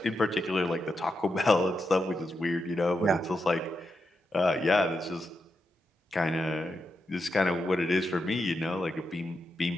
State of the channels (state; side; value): normal; both; correlation 0.85